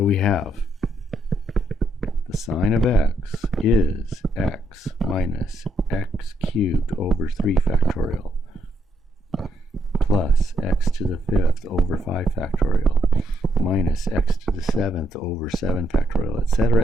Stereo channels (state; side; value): normal; both; correlation 0.76